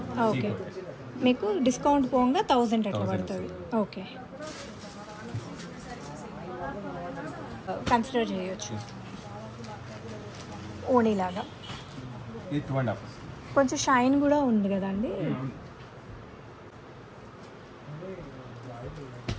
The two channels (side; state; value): both; identical; correlation 1.00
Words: ఓకే. మీకు డిస్కౌంట్ పోగా 1000 అట్లా పడుతుంది. ఓకే. కన్సిడర్ చేయొచ్చు. ఓణీలాగా ఇది 2.5. కొంచెం షైన్ కూడా ఉంది కదండి.